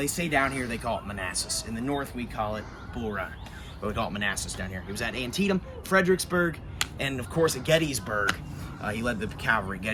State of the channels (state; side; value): identical; both; correlation 1.00